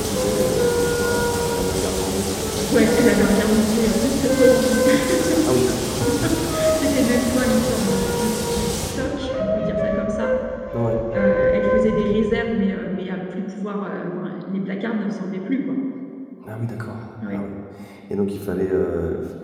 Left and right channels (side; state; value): both; identical; correlation 1.00